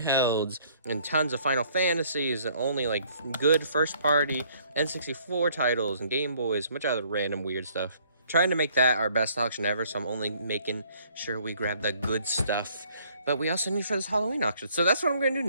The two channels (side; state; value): both; inverted; correlation -0.62